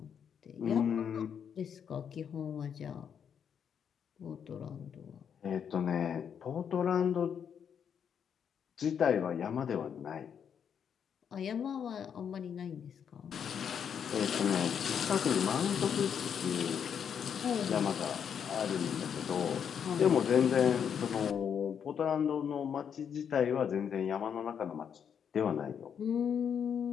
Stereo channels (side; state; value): right; quieter; 7.8 dB